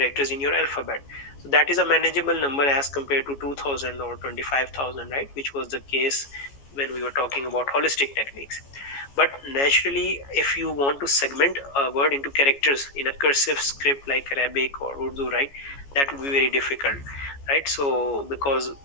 in your alphabet. So that is a manageable number as compared to 2000 or 25,000, right? Which was the case when we were talking about holistic techniques. But naturally, if you want to segment a word into characters in a cursive script like Arabic or Urdu, right, that would be very difficult, right? So because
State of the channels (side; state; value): right; late; 14 ms